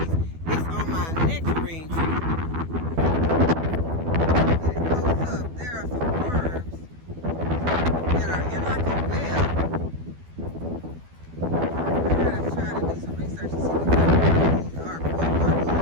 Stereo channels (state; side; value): late; left; 12 ms